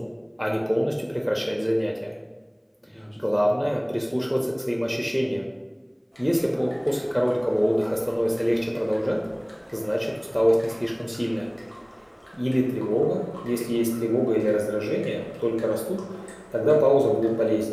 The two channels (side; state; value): both; identical; correlation 1.00